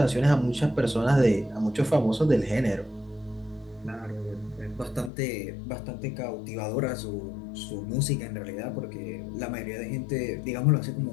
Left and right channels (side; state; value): right; drops out; at 5.1 s